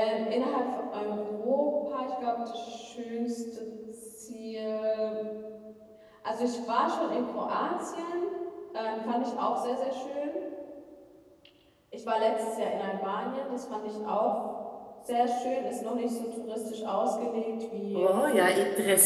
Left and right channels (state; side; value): identical; both; correlation 1.00